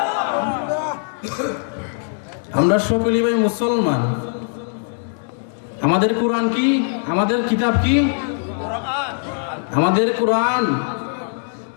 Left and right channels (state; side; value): silent; right; 64 dB below the other